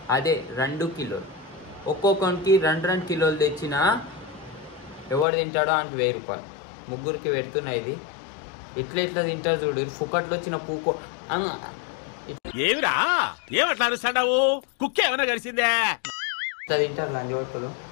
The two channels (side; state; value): right; drops out; at 5.2 s